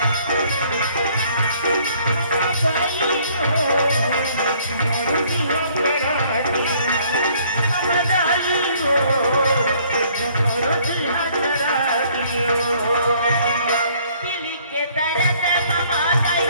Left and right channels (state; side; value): inverted; both; correlation -0.61